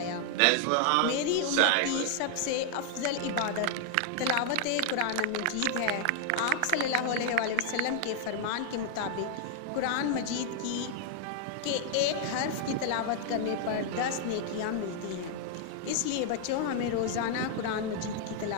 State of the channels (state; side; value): different; both; correlation 0.00